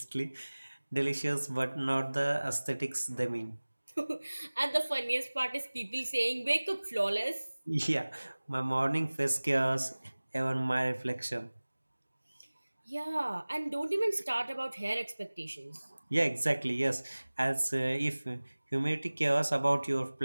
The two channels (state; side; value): inverted; both; correlation -1.00